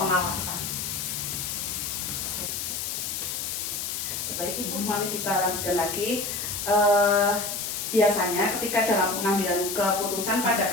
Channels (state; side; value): noise; left; hiss, 3 dB below the sound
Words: Baik Ibu, mari kita lanjutkan lagi. Biasanya ketika dalam pengambilan keputusan